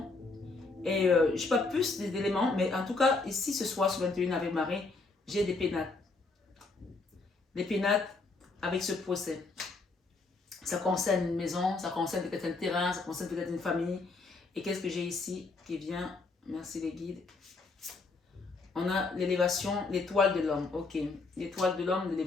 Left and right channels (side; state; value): right; quieter; 3.8 dB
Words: Et je n'ai pas plus d'éléments, mais en tout cas, ici ce soir sur 21 avec Marie, j'ai des pénates. Des pénates avec ce procès. Ça concerne une maison, ça concerne peut-être un terrain, ça concerne peut-être une famille. Et qu'est-ce que j'ai ici qui vient? Merci les guides. On a l'élévation, l'étoile de l'homme. Ok. L'étoile de l'homme,